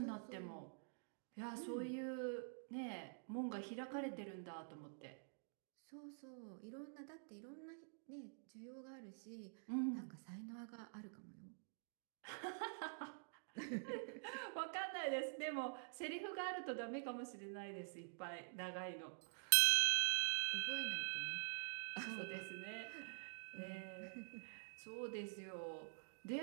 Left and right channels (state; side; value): silent; left; digital silence